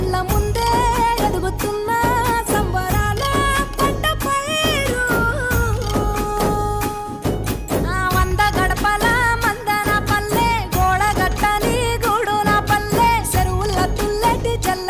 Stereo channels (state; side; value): identical; both; correlation 1.00